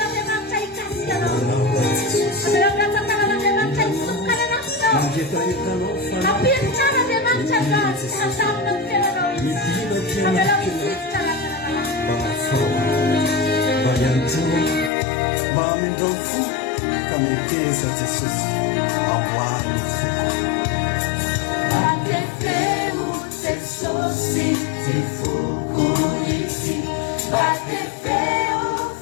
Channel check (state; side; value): drops out; right; at 14.9 s